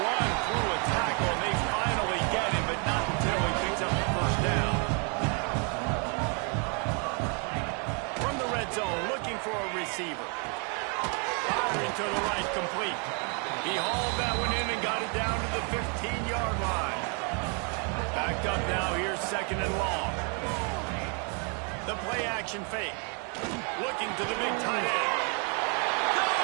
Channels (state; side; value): quieter; left; 37.2 dB